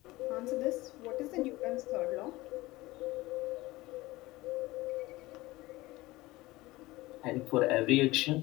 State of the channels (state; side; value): quieter; right; 19.6 dB